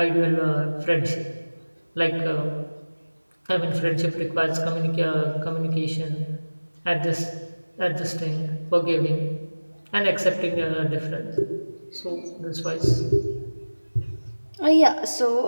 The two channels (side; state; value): both; inverted; correlation -1.00